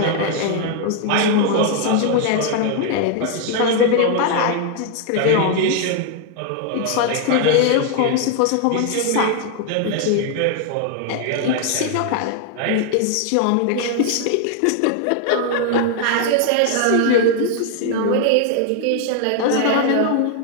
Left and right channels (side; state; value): both; different; correlation 0.00